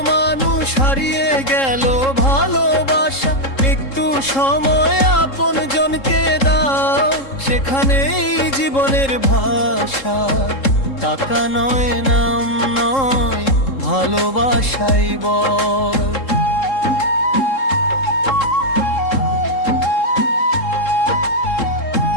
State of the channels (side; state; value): right; late; 3.7 ms